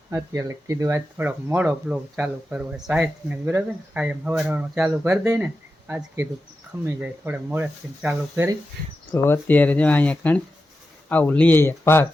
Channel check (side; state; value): both; normal; correlation 0.91